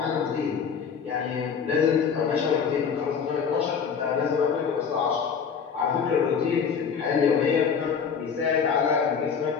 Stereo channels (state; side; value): quieter; right; 6.6 dB